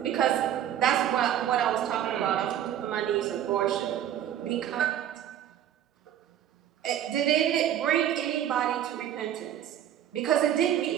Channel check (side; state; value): left; quieter; 10.8 dB